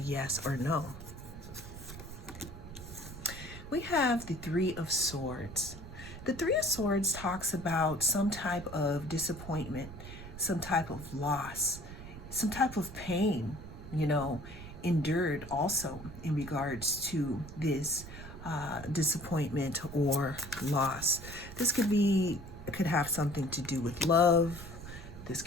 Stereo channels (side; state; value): right; noise; rumble, 13 dB below the sound